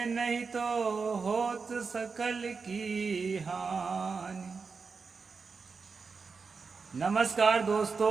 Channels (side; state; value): left; quieter; 4.9 dB